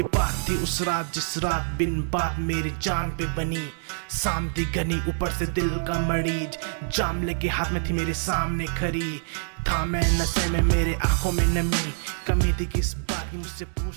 बात थी उस रात जिस रात बिन बात मेरी जान पे बनी। शाम थी घनी, ऊपर से दिल का मरीज, जाम लेके हाथ में थी मेरे सामने खड़ी। था मैं नशे में, मेरे आंखों में नमी, कमी थी किस बात की मुझसे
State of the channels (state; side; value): silent; left; digital silence